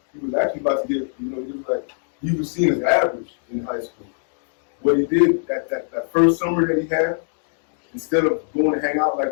He was actually about to get, he was seen as average in high school. What he did that first summer that he had, instead of going to hang out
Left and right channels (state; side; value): silent; right; digital silence